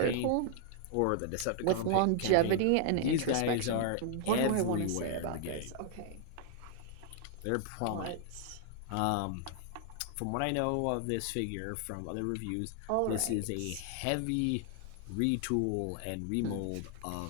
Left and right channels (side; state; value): both; different; correlation 0.00